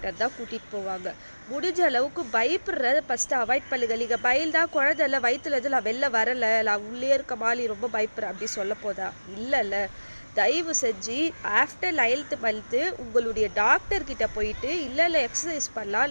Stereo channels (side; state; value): both; inverted; correlation -1.00